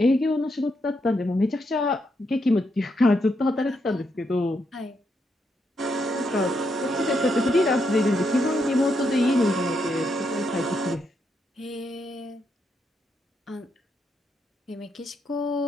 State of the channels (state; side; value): normal; both; correlation 0.79